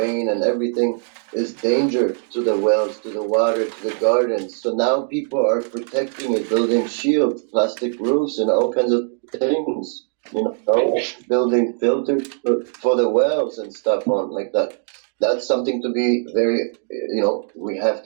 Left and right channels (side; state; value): left; silent; 58 dB below the other